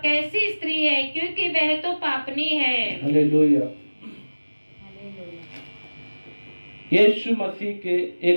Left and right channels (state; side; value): inverted; both; correlation -1.00